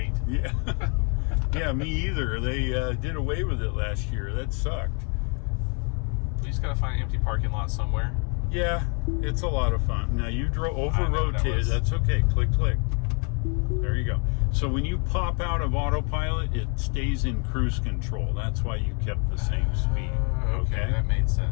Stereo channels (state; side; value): quieter; right; 37.2 dB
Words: Yeah. Yeah, me either. They did away with it last year. That sucked. We just gotta find an empty parking lot somewhere. Yeah, it's a lot of fun. Now you over-rotated. that was... That's okay. Click, click. There you go. So when you pop out of autopilot, it stays in cruise control. That's why you kept the same speed. Okay, that made